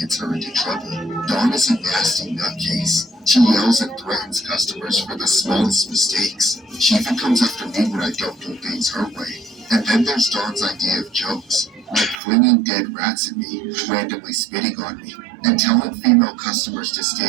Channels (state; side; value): drops out; left; at 12.2 s